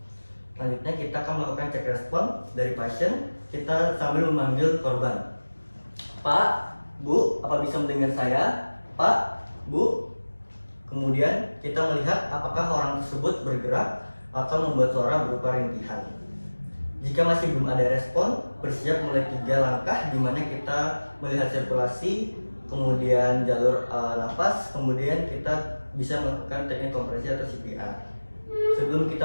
Selanjutnya kita akan melakukan cek respon dari pasien. Kita sambil memanggil korban. Pak, Bu, apa bisa mendengar saya? Pak, Bu. Kemudian kita melihat apakah orang tersebut bergerak atau membuat suara berupa rintihan. Jika masih belum ada respon, bersiap mulai 3 langkah di mana kita melihat sirkulasi, kemudian jalur nafas, kemudian kita bisa melakukan teknik kompresi atau CPR. Sebelum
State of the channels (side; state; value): both; inverted; correlation -1.00